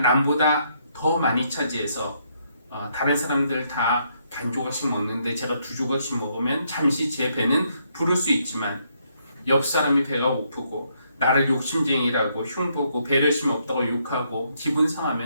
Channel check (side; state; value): both; inverted; correlation -0.73